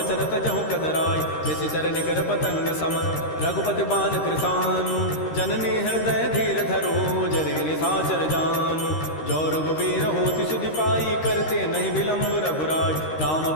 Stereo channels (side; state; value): right; late; 13 ms